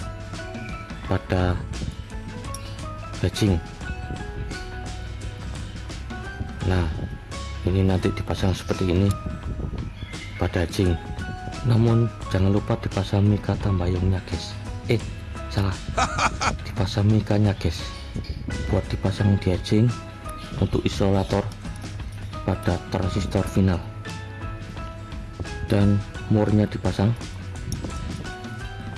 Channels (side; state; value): both; identical; correlation 1.00